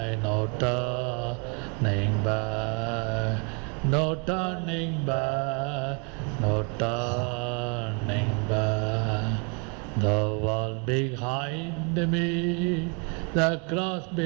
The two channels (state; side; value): quieter; left; 34.3 dB